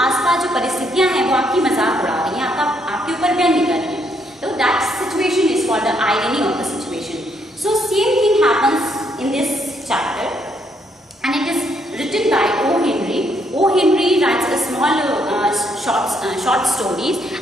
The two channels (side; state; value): both; normal; correlation 0.73